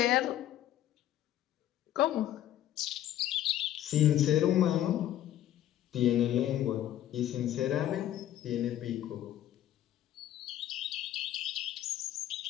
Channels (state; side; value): quieter; right; 12.2 dB